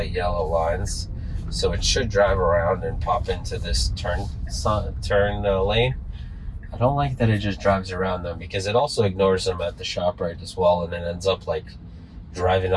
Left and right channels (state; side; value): identical; both; correlation 1.00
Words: yellow lines, so it should drive around and pop into this turn lane. I don't like that it just drives around them, because it also ignores them at the ShopRite as well, and then ends up like driving